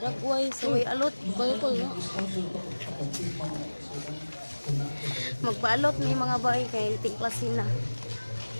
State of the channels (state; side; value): inverted; both; correlation -1.00